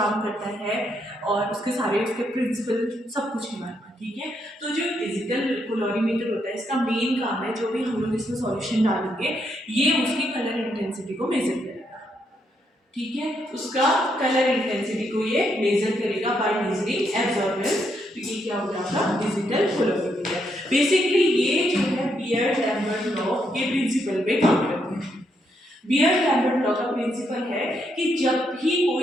करता है और उसके सारे उसके प्रिंसिपल सब कुछ है हमारे पास। ठीक है, तो जो डिजिटल कैलोरीमीटर होता है इसका मेन काम है, जो भी हम लोग इसमें सॉल्यूशन डालेंगे ये उसकी कलर इंटेंसिटी को मेजर करेगा। ठीक है, उसका कलर इंटेंसिटी को ये मेजर करेगा बाय मेजरिंग एब्जॉर्बेंस। तो ये क्या हो जाएगा, डिजिटल कैलोरीमीटर। बेसिकली ये जो है बियर्ड-लैम्बर्ट लॉ के प्रिंसिपल पे काम करते हैं। बियर्ड-लैम्बर्ट लॉ का प्रिंसिपल है कि जब भी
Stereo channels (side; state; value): both; normal; correlation 0.77